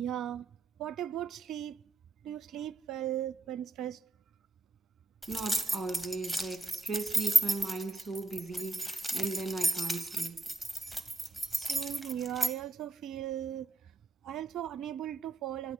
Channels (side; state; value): left; quieter; 3.2 dB